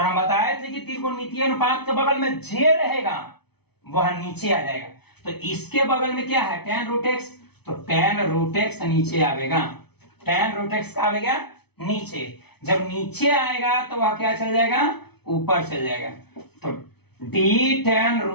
बताए थे कि त्रिकोणमितीय अनुपात के बगल में जे रहेगा वह नीचे आ जाएगा, तो इसके बगल में क्या है tan रूट x, तो tan रूट x नीचे आएगा, tan रूट x का आएगा नीचे, जब नीचे आएगा तो वह क्या चल जाएगा ऊपर चल जाएगा, तो d tan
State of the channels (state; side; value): late; right; 0.98 ms